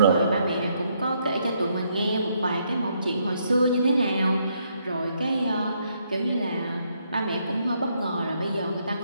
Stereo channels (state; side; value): inverted; both; correlation -0.74